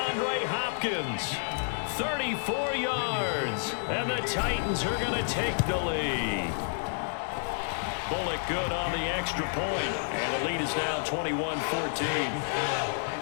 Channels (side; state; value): right; silent; digital silence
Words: Hopkins, 34 yards, and the Titans are going to take the lead. Bullock good on the extra point, and the lead is now 21-14.